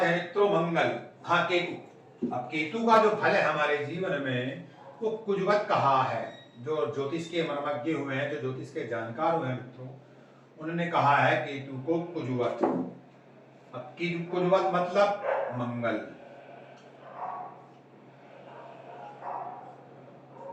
हैं मित्रों मंगल, हाँ केतु। अब केतु का जो फल है हमारे जीवन में वो कुजवत कहा है। जो ज्योतिष के मर्मज्ञ हुए हैं, जो ज्योतिष के जानकार हुए हैं मित्रों, उन्होंने कहा है केतु को कुजवत। अब कुजवत मतलब मंगल।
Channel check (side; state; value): both; identical; correlation 1.00